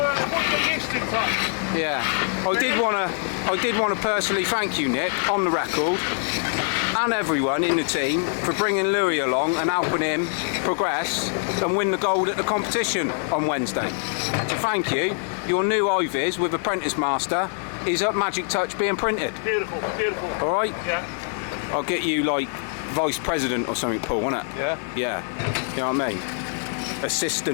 the list in touch? Yeah. I did want to personally thank you, Nick, on the record, and everyone in the team for bringing Louis along and helping him progress and win the gold at the competition on Wednesday. So thank you. Your new iViz with Apprentice Master is at Magic Touch being printed. Beautiful, beautiful. All right? Yeah. I'll get you like Vice President or something, Paul, won't it? Yeah. Yeah. You know what I mean?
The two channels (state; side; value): silent; right; 57 dB below the other